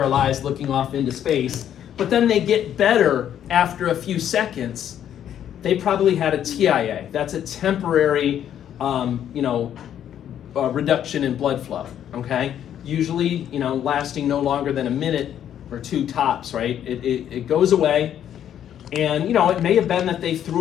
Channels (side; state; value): right; quieter; 10.1 dB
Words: looking off into space, but then they get better after a few seconds, they probably had a TIA. That's a temporary, reduction in blood flow, okay? Usually, lasting no longer than a minute or two tops, right? It goes away, and, it may have been that they